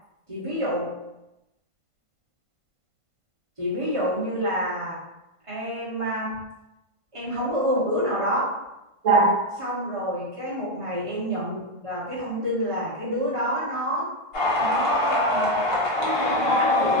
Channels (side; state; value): left; late; 1.5 ms